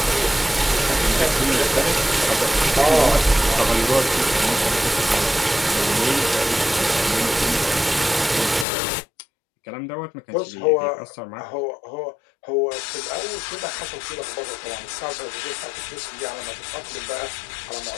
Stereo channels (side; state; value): right; drops out; at 8.7 s